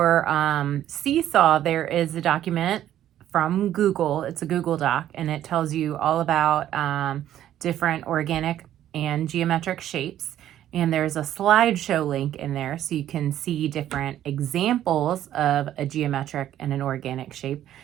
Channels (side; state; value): left; quieter; 11.9 dB